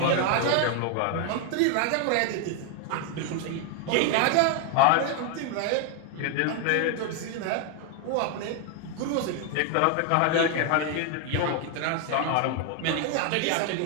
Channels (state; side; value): different; both; correlation 0.01